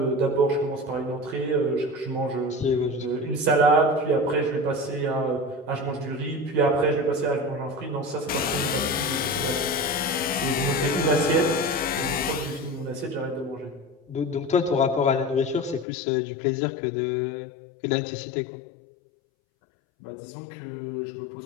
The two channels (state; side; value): drops out; right; at 15.9 s